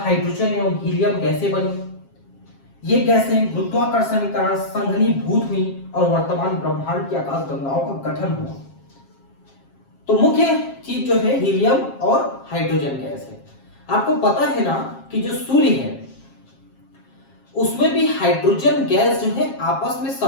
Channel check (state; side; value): late; right; 7.4 ms